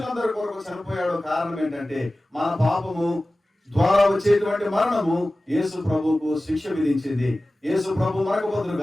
కొరకు చనిపోయాడు. కారణం ఏంటంటే మన పాపము ద్వారా వచ్చేటువంటి మరణము యేసు ప్రభువుకు శిక్ష విధించింది. యేసు ప్రభు మనకు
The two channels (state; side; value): normal; both; correlation 0.96